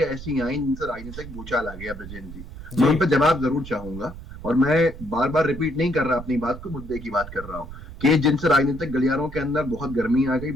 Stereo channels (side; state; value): right; noise; rumble, 13 dB below the sound